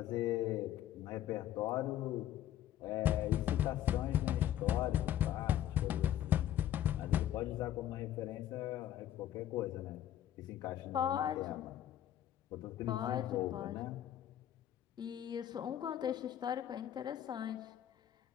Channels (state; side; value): quieter; right; 11.7 dB